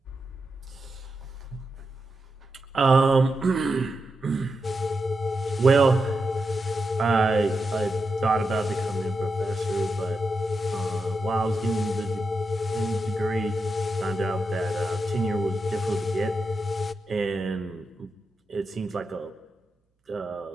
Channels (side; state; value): both; normal; correlation 0.87